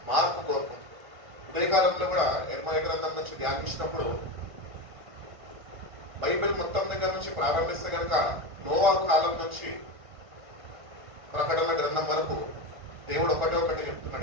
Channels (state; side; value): late; left; 1.5 ms